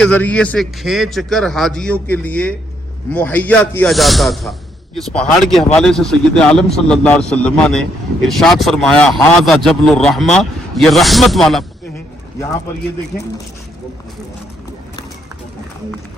ذریعے سے کھینچ کر حاجیوں کے لیے مہیا کیا جاتا تھا، اس پہاڑ کے حوالے سے سید عالم صلی اللہ علیہ وسلم نے ارشاد فرمایا ھذا جبل الرحمہ، یہ رحمت والا ہے. یہاں پر یہ دیکھیں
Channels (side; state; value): both; normal; correlation 0.73